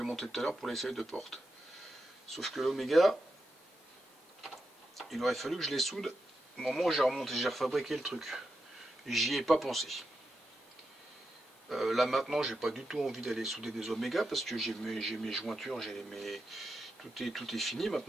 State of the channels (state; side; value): normal; both; correlation 0.87